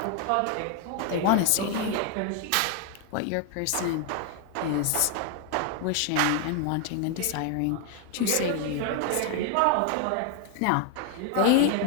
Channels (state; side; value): different; both; correlation 0.00